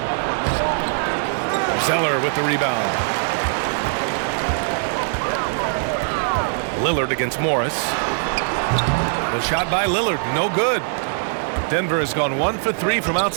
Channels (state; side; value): silent; left; digital silence